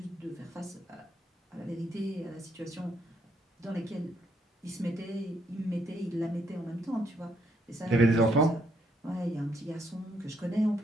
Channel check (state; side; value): normal; both; correlation 0.73